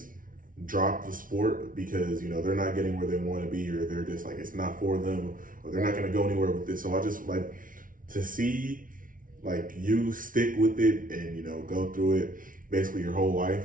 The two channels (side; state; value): left; late; 0.39 ms